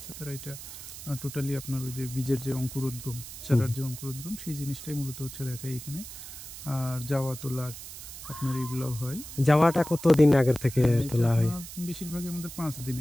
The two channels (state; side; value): noise; right; hiss, 12 dB below the sound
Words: তারা এটা টোটালি আপনার ওই যে বীজের যে অঙ্কুরোদ্গম, চারার যে অঙ্কুরোদ্গম, সেই জিনিসটাই মূলত হচ্ছে দেখায় এখানে। আর যাওয়া তোলার আপনার এগুলো হয়। যাওয়াটা কতদিন আগের থেকে এটা তোলা হয়? আপনার বেশিরভাগই আমাদের 5